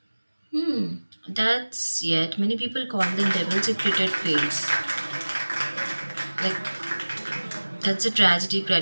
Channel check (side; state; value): both; inverted; correlation -1.00